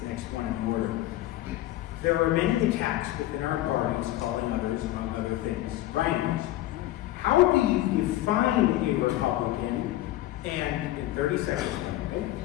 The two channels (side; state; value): right; quieter; 15.4 dB